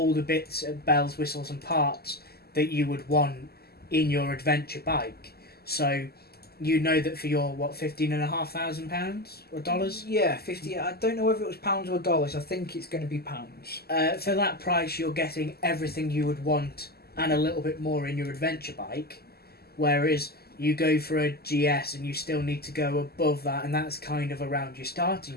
the bits of bells, whistles and parts that you would want in your adventure bike. So you know that for your £15,500 or dollars? Yeah, 50. I don't know whether it was pounds or dollars. I think it's going to be pounds. For that price, you're getting everything you would want and a little bit more in your adventure bike. Whereas you go for a GS and you still need to go above that, and that's kind of around your starting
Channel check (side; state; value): right; late; 0.46 ms